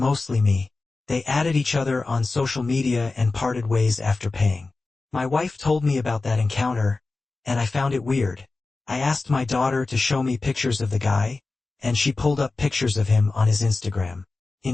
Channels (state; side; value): quieter; right; 3.6 dB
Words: me. They added each other on social media and parted ways after paying. My wife told me about that encounter, and I found it weird. I asked my daughter to show me pictures of the guy, and she pulled up pictures of him on his Instagram.